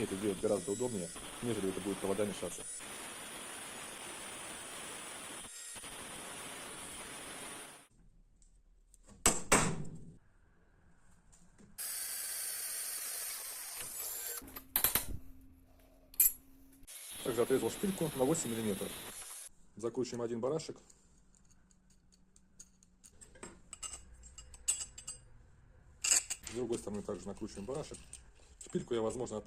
это делать гораздо удобнее, нежели это будет провода мешаться. Также отрезал шпильку на 8 мм. Закручиваем один барашек. С другой стороны также накручиваем барашек. Шпильку я, возможно,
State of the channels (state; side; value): identical; both; correlation 1.00